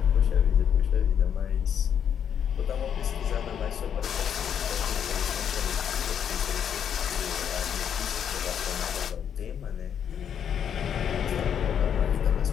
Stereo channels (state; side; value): quieter; right; 8.5 dB